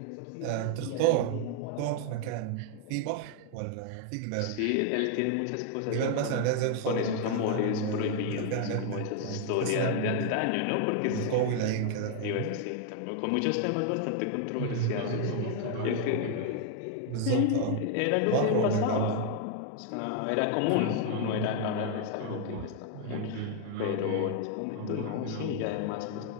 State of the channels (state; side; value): different; both; correlation 0.00